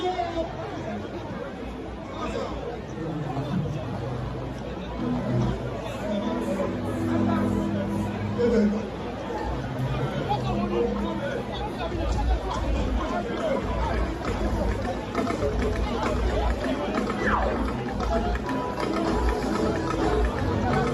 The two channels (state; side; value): identical; both; correlation 1.00